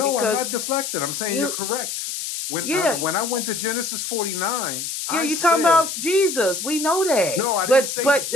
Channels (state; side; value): noise; left; hiss, 5 dB below the sound